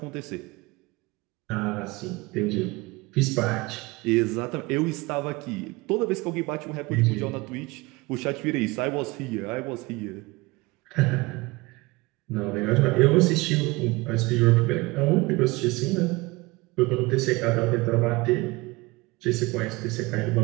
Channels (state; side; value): quieter; left; 23.0 dB